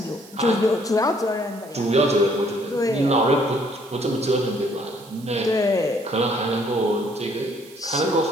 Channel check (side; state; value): right; noise; hiss, 23 dB below the sound